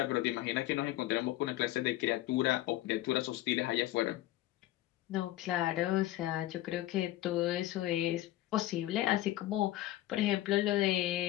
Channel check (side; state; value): right; quieter; 15.4 dB